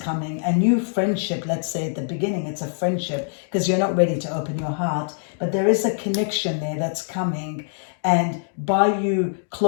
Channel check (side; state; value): right; silent; digital silence